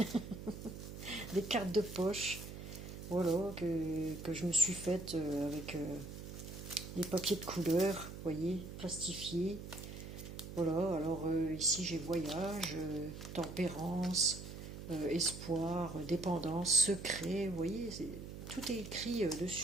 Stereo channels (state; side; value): noise; right; hum, 10 dB below the sound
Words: Des cartes de poche. Voilà, que je me suis faite avec des papiers de couleur, vous voyez, plastifiés. Voilà, alors ici j'ai voyage, tempérance, espoir, dépendance, secret, vous voyez, tout est écrit